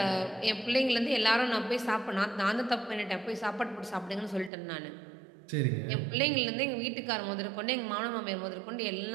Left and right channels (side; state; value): left; drops out; at 4.5 s